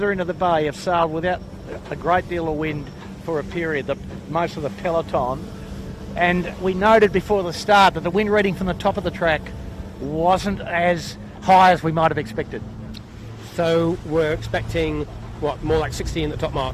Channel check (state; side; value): identical; both; correlation 1.00